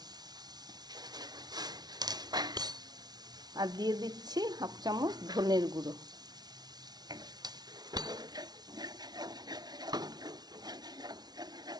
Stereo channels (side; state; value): left; late; 0.19 ms